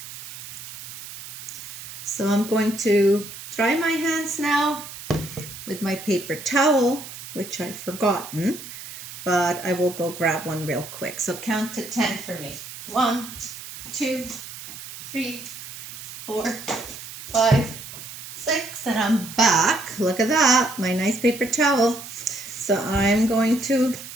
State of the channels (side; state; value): right; noise; hiss, 12 dB below the sound